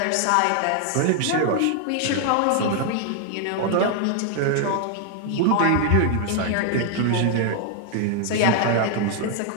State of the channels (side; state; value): both; different; correlation 0.00